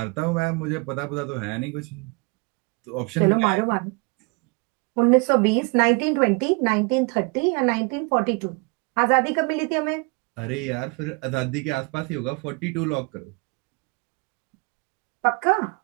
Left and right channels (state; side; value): quieter; left; 30.6 dB